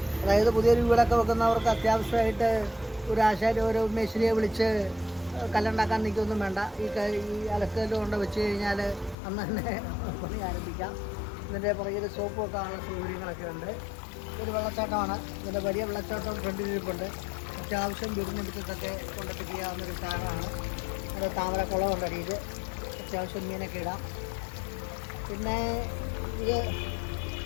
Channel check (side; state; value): right; drops out; at 9.2 s